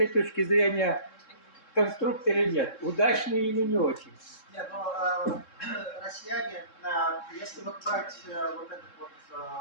точки зрения конструкт или нет, удачный или не очень? Нет, ну, россияне, если вот брать вот этот вот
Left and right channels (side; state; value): right; late; 3.7 ms